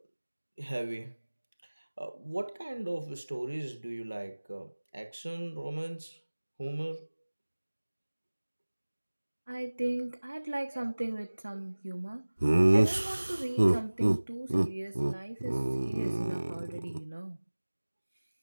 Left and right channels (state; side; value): inverted; both; correlation -1.00